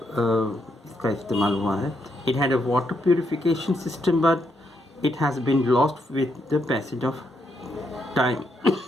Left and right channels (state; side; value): normal; both; correlation 0.78